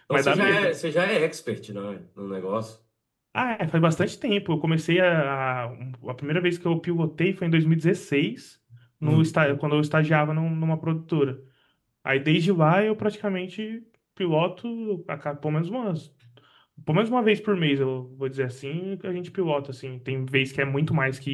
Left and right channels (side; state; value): both; identical; correlation 1.00